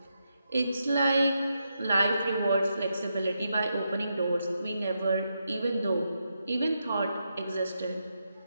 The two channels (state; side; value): inverted; both; correlation -0.84